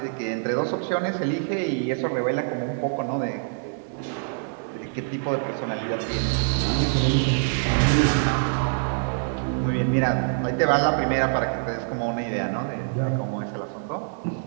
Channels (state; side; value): silent; left; 62 dB below the other